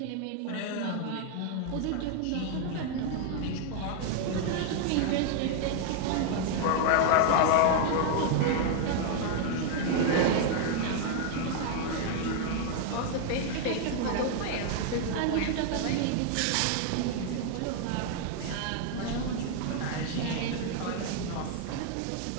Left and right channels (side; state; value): both; different; correlation 0.00